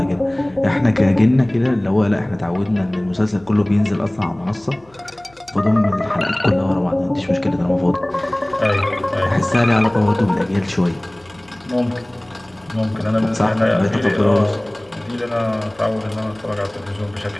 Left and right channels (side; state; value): left; noise; hum, 30 dB below the sound